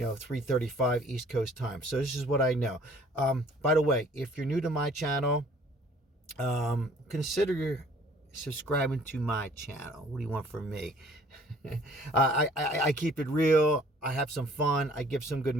East Coast time. So this is what I know. By the way, if you're new to my channel, consider subscribing to my channel. What do you want from me? I keep it real. I have some fun. I give some good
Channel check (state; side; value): normal; both; correlation 0.56